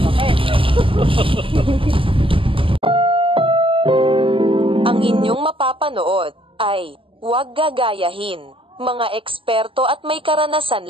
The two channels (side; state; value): left; late; 0.25 ms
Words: Ang inyong mapapanood ay huwag gagayahin. Mga eksperto at may